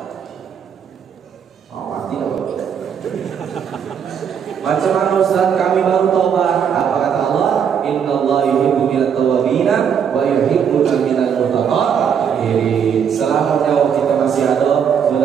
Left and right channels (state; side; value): quieter; left; 7.7 dB